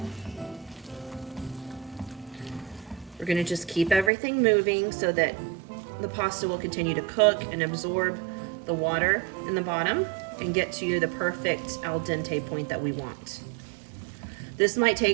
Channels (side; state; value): left; drops out; at 4.1 s